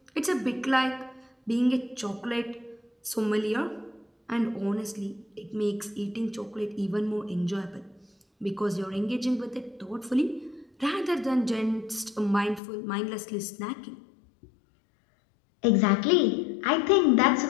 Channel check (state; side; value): drops out; right; at 12.6 s